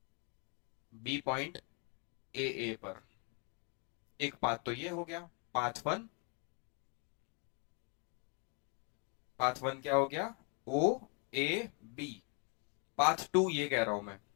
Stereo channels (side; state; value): right; quieter; 36.8 dB